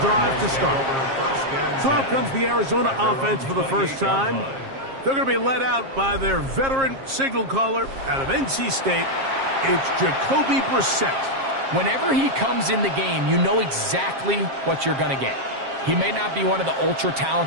to start. So out comes the Arizona offense for the first time. They're going to be led out by their veteran signal caller out of NC State. It's Jacoby Brissett. Whenever he comes in the game, you know exactly what you're going to get. He may not be one of the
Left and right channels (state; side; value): late; left; 7.5 ms